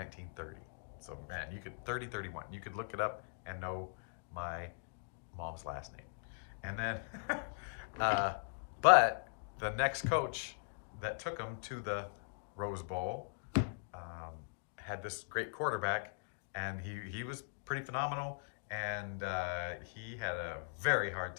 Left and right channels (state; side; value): silent; right; digital silence